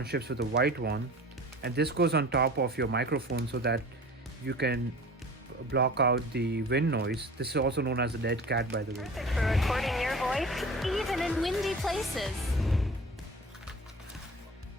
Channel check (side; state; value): both; normal; correlation 0.40